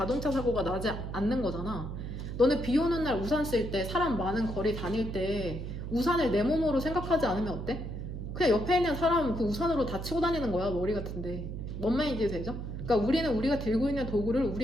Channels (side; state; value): right; noise; hum, 6 dB below the sound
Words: 사고가 나지 않는 거잖아. 너네 비 오는 날 우산 쓸 때, 사람 많은 거리 다닐 때 우산을 내 몸으로 생각하지 않으면 어때? 그냥 옆에 있는 사람 그 우산으로 다 치고 다니는 거야, 머리 같은데. 뭔 말인지 되죠? 그러니까 우리는 우리가 들고 있는 도구를